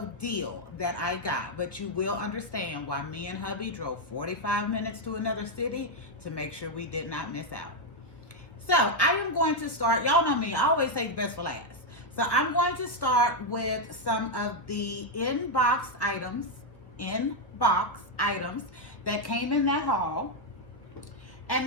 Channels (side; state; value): right; late; 1.4 ms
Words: deal that I got, but you will understand why me and hubby drove 45 minutes to another city to make sure we did not miss out. So I am going to start, y'all know me, I always say the best for last. So I'm going to start with some of the in-box items that came in that haul.